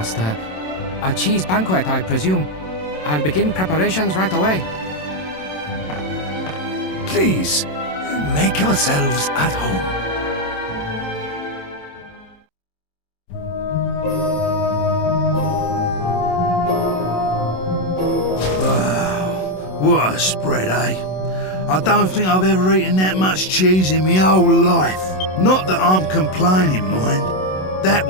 A cheese banquet, I presume. I'll begin preparations right away. Please, make yourselves at home. Wow, what a spread, eh? I don't think I've ever eaten that much cheese in my whole life. Not that I'm complaining, mind. That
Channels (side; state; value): right; late; 27 ms